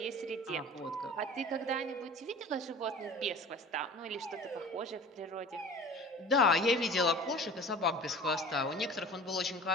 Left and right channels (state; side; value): normal; both; correlation 0.41